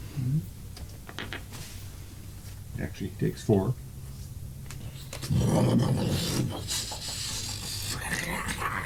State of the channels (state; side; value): identical; both; correlation 1.00